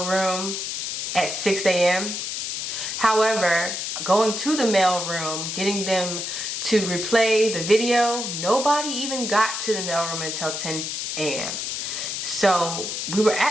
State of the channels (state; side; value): noise; left; hiss, 4 dB below the sound